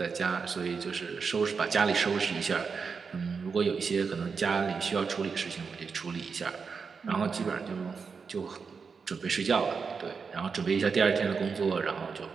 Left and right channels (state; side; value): quieter; left; 5.4 dB